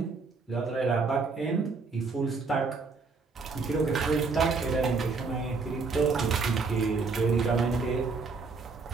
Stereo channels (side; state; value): left; quieter; 4.4 dB